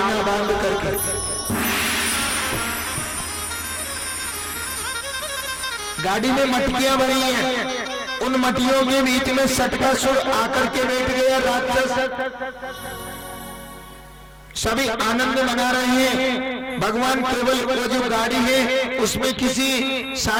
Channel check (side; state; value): both; identical; correlation 1.00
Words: बांध करके। गाड़ी में मटकियां बनी है, उन मटियों के बीच में सटकासुर आकर के बैठ गया राक्षस। सभी आनंद मना रहे हैं। भगवान केवल वो जो गाड़ी है उसमें किसी